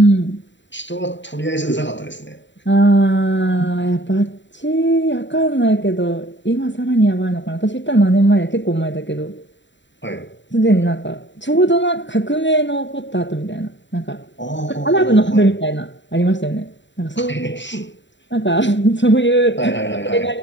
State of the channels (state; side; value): late; right; 0.53 ms